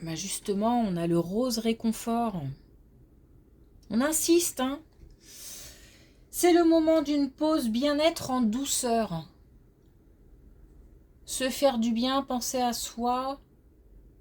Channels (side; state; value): both; identical; correlation 1.00